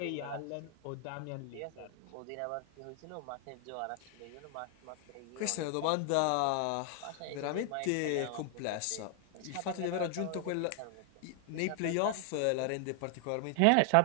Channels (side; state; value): both; different; correlation 0.00